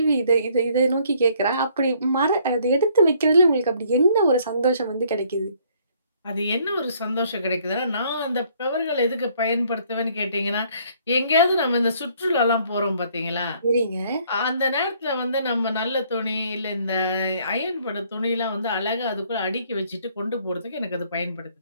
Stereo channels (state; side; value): inverted; both; correlation -0.63